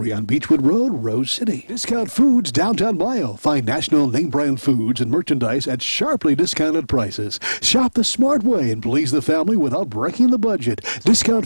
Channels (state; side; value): inverted; both; correlation -1.00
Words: on Beechwood Road, Rose City. Discount Foods, downtown Mayo. Find national name-brand foods and merchandise at sharply discounted prices. Shop the smart way and please the family without breaking the budget.